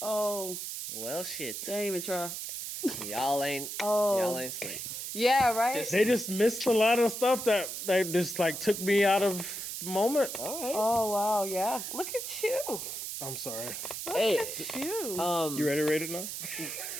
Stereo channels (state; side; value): noise; right; hiss, 6 dB below the sound